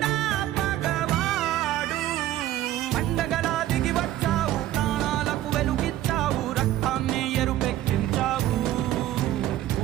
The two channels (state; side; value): quieter; left; 13.6 dB